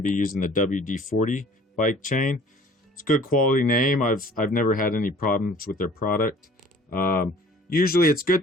be using the WD40 bike chain. It's a good quality name. I've never had any problems with their product. Usually it's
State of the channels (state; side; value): normal; both; correlation 0.51